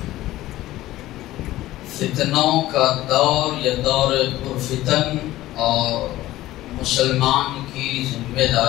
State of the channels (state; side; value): quieter; right; 15.8 dB